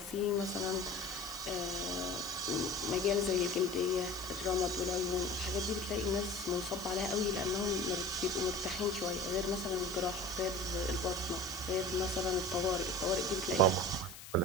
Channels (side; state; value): left; noise; hiss, 14 dB below the sound